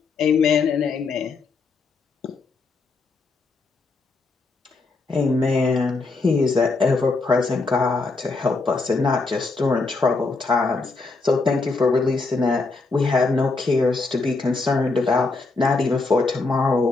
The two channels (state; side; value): quieter; right; 3.9 dB